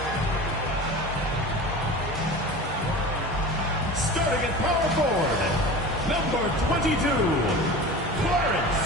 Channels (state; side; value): normal; both; correlation 0.34